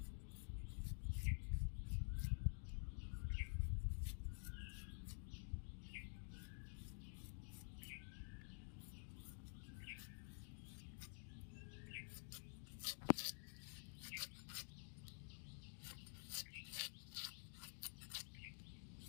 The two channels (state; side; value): silent; right; digital silence